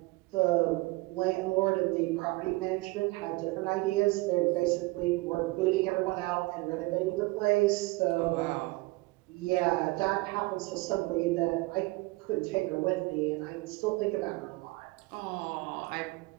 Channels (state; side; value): quieter; left; 23.3 dB